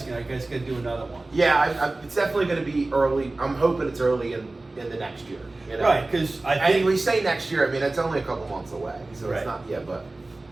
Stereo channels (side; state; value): left; quieter; 3.0 dB